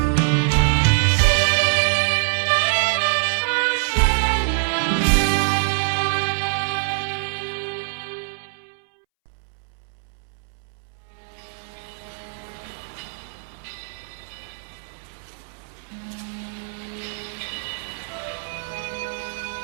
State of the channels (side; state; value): left; silent; 63 dB below the other